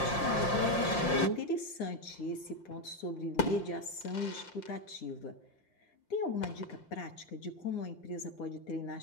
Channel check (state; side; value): late; right; 5.7 ms